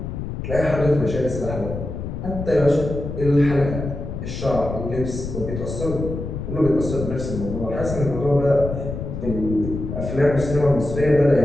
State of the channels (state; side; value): noise; left; rumble, 6 dB below the sound